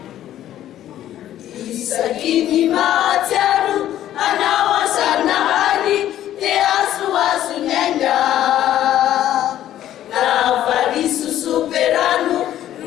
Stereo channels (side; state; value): right; quieter; 12.2 dB